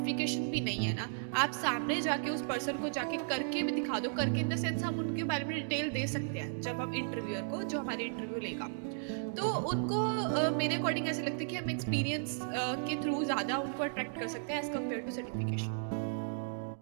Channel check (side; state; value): left; silent; digital silence